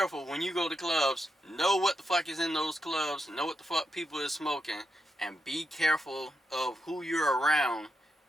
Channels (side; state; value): both; normal; correlation 0.84